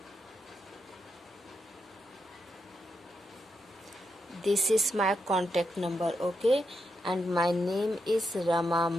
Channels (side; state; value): both; normal; correlation 0.83